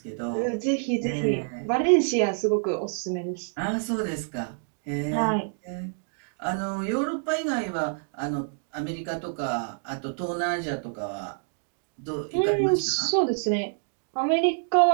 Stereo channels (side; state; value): left; silent; digital silence